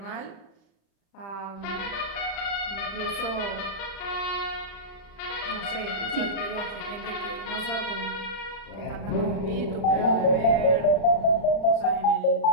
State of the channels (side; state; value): right; late; 35 ms